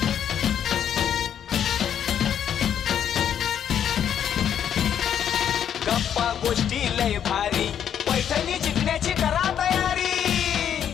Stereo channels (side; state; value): right; quieter; 9.1 dB